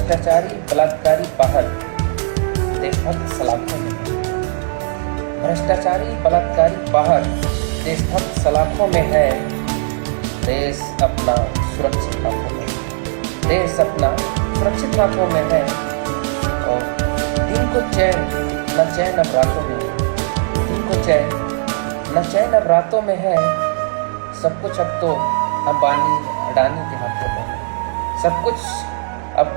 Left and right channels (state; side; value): silent; left; digital silence